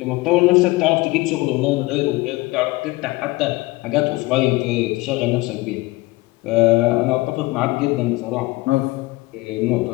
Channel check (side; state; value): right; quieter; 21.6 dB